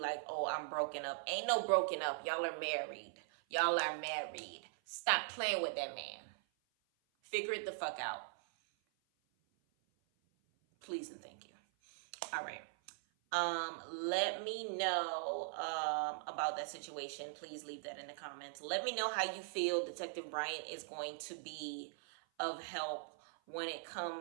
oh, I'm broken up. Ain't no broken up. Y'all are married. Y'all are married. Stop playing with that man. Figure it the fuck out. Please and thank you. All right. Let me know about that situation. Please leave that in the comments. Let me know how you feel Detective Bryant is going to be of help when it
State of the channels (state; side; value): silent; left; 50 dB below the other